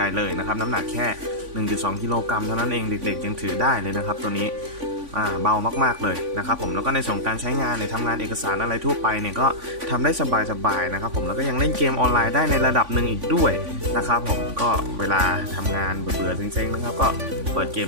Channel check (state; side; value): late; left; 3.5 ms